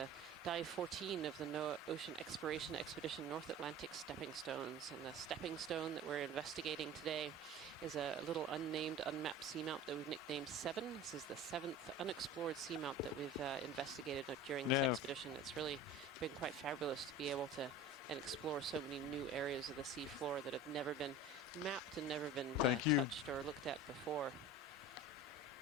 Dive 14 of the NOAA Ocean Exploration Expedition North Atlantic Stepping Stones. And the stepping stone that we're investigating today is a little unnamed, unmapped seamount that we've nicknamed 7. This is the 7th unexplored seamount that we've investigated during this expedition. It's really been quite fabulous to be able to explore so many new areas of the seafloor that have never been mapped and never been touched or looked at before.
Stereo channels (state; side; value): normal; both; correlation 0.37